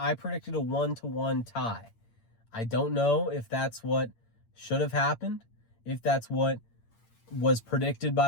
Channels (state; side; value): late; right; 8.8 ms